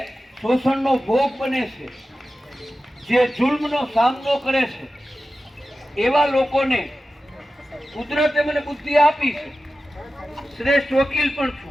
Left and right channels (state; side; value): normal; both; correlation 0.93